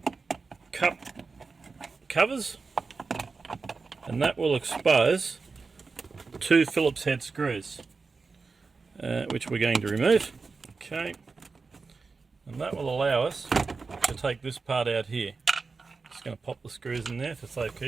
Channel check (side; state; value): left; quieter; 4.4 dB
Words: cup covers, and that will expose two Phillips head screws, which we're going to remove. Okay. And that will allow us to take this part out here. Just going to pop the screws in there for